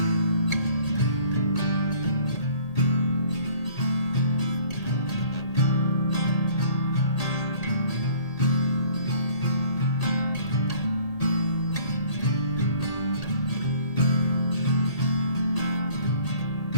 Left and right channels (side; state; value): right; late; 1.8 ms